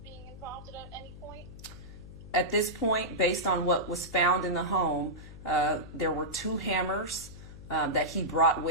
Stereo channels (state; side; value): noise; left; hum, 15 dB below the sound